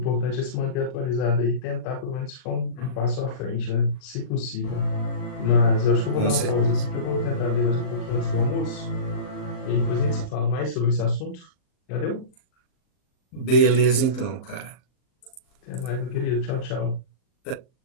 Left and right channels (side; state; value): right; late; 39 ms